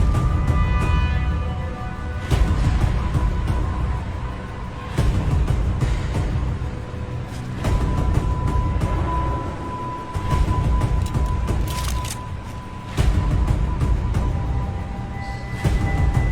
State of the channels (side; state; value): both; identical; correlation 1.00